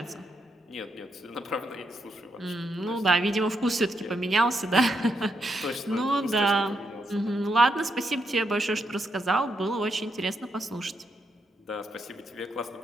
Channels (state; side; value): normal; both; correlation 0.80